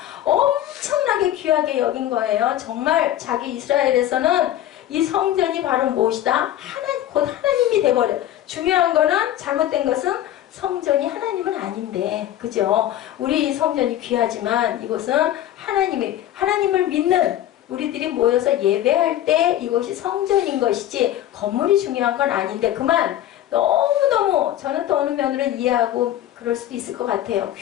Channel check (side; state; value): right; quieter; 12.5 dB